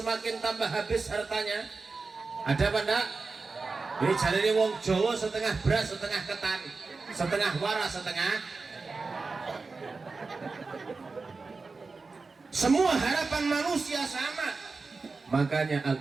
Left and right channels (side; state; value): left; quieter; 4.1 dB